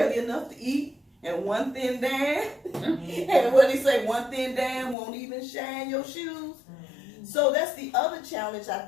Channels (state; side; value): drops out; right; at 5.0 s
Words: enough to eat and one thin dam. And what he say, one thin dam won't even shine your shoes. So that's the other challenge I